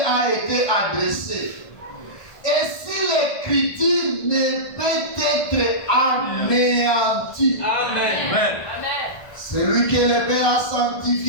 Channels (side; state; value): right; late; 1.5 ms